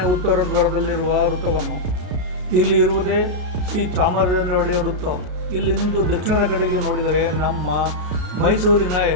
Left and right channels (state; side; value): late; left; 33 ms